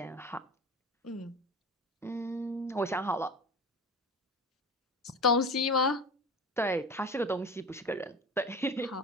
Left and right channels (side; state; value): both; normal; correlation 0.32